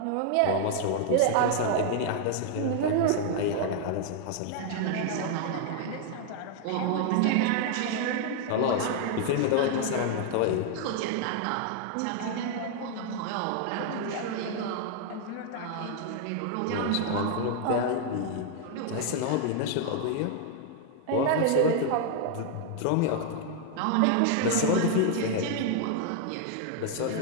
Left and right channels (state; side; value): different; both; correlation 0.00